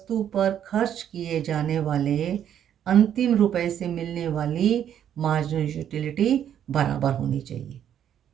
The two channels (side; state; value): left; quieter; 9.8 dB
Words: पर खर्च किए जाने वाले अंतिम रुपए से मिलने वाली मार्जिनल यूटिलिटी बराबर होनी चाहिए।